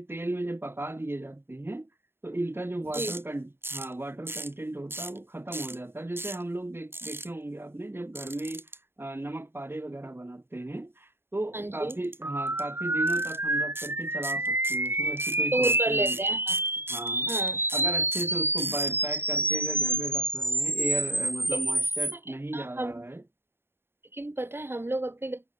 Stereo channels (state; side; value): late; left; 0.11 ms